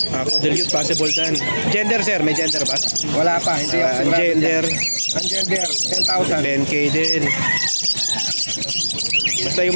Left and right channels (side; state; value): both; inverted; correlation -1.00